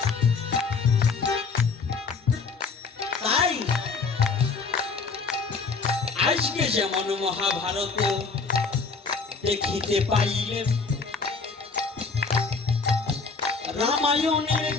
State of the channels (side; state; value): right; quieter; 4.6 dB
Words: তাই আজকে যেমন মহাভারত দেখিতে পাইলে, রামায়ণের